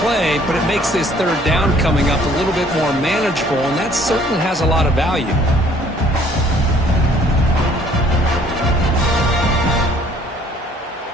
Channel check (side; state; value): both; normal; correlation 0.59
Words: play, but it makes this third down coming up a little bit more manageable, and that certainly has a lot of value.